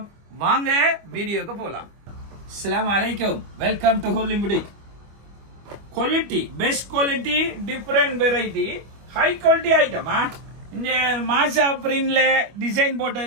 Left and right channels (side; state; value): left; late; 25 ms